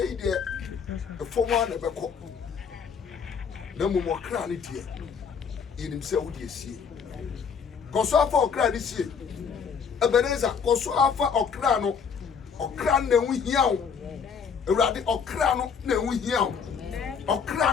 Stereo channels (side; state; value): right; quieter; 6.4 dB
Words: yi deɛ ɛfɔm a na ɛbɛkɔ na mmom ɔkra ne deɛ yɛnim sɛ wo deɛ sie kɔso afa ɔkra ne sie Ebenezer kɔso afa ɔkra no ɔkra no na ɛho hia wo Awurade ɔkra no na ɛho hia wo